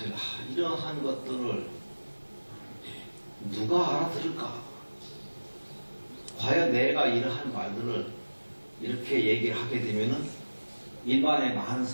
이러한 것들을 누가 알아들을까? 과연 내가 이러한 말들을 이렇게 얘기를 하게 되면은 일반의 많은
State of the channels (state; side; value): inverted; both; correlation -1.00